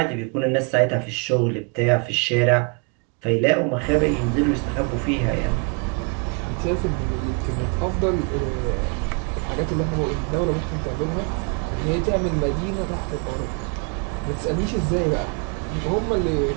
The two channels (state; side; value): quieter; left; 36.4 dB